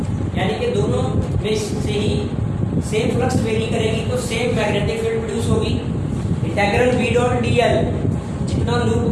यानी कि दोनों में से ही सेम फ्लक्स वेरी करेगी तो सेम मैग्नेटिक फील्ड प्रोड्यूस होगी। इंटीग्रल बी डॉट डीएल, जितना लूप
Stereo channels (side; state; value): both; identical; correlation 1.00